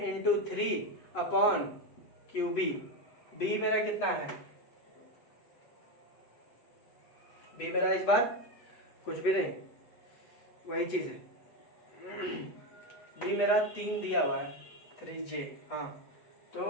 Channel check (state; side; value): late; right; 8.1 ms